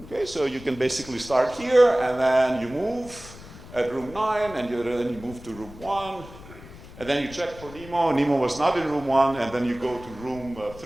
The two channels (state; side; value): noise; left; rumble, 17 dB below the sound